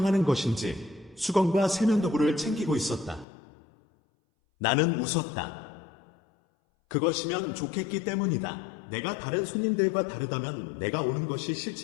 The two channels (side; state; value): right; drops out; at 3.2 s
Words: 것인지 수건과 세면도구를 챙기고 있었다. 나는 웃었다. 그것이면 좋겠기 때문이다. 내가 다른 손님들과 다르다면, 내가 오는 것이